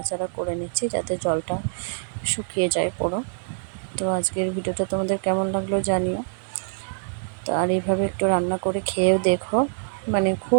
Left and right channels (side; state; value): left; silent; 62 dB below the other